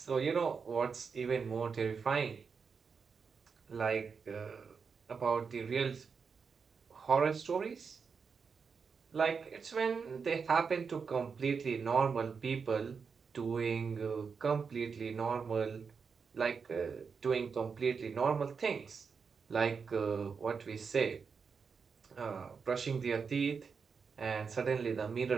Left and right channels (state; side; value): quieter; left; 5.6 dB